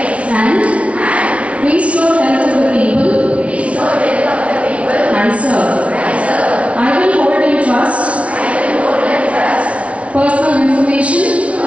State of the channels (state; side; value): late; left; 0.063 ms